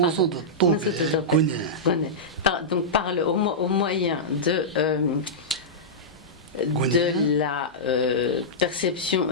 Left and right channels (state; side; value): normal; both; correlation -0.13